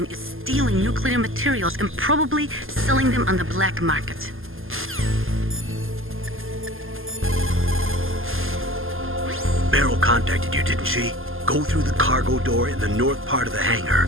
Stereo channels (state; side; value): late; left; 0.59 ms